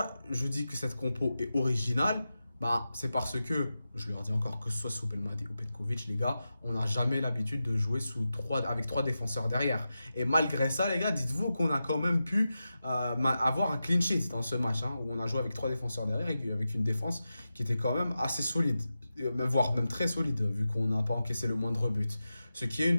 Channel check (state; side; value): inverted; both; correlation -0.92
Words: je dis que cette compo est originale? Bah, c'est parce que, je leur dis encore, que ce soit sous Belmadi ou Petkovic, les gars, on n'a jamais l'habitude de jouer avec trois défenseurs derrière. Et malgré ça, les gars, dites-vous qu'on a quand même pu avoir un clean sheet dans ce match, hein, où on a joué avec trois défenseurs derrière et avec une défense qui était quand même assez solide, voire même très solide, vu qu'on n'a pas encaissé le moindre but. Ce qui est une